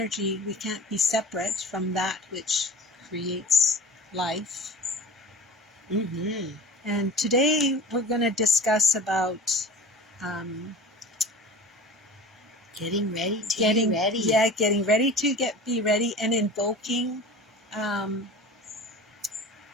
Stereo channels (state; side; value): normal; both; correlation 0.38